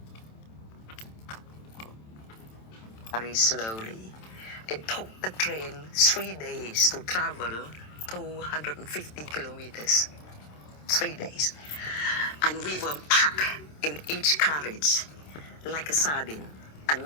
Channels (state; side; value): late; right; 27 ms